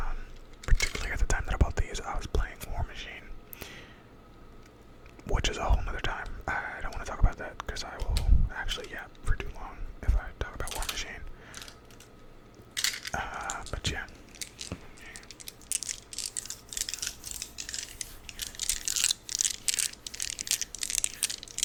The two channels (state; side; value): identical; both; correlation 1.00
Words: Particularly at the time that I bought these, I was playing War Machine, which is a whole nother time. I don't want to talk about that because I will actually yap for too long if I talk about War Machine. But yeah.